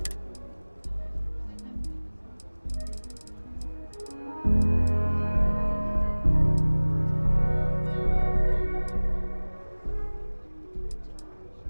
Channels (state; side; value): inverted; both; correlation -1.00